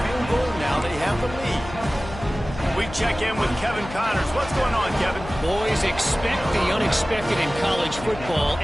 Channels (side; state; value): left; noise; hum, 12 dB below the sound